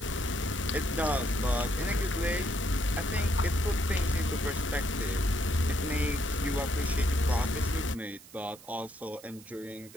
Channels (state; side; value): noise; right; hiss, 20 dB below the sound